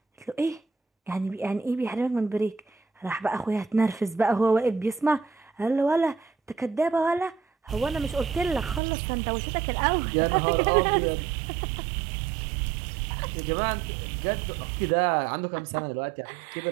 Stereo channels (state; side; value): drops out; left; at 8.8 s